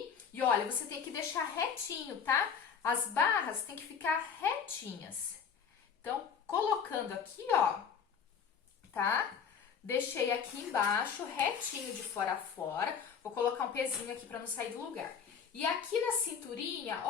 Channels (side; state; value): right; quieter; 6.8 dB